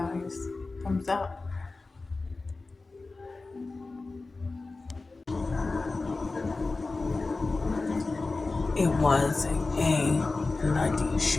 Thumbs up. It was a bloody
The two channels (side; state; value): right; quieter; 3.6 dB